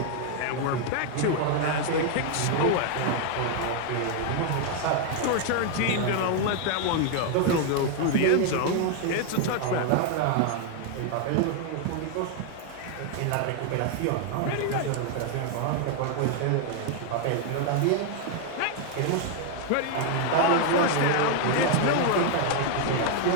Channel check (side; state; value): both; different; correlation 0.00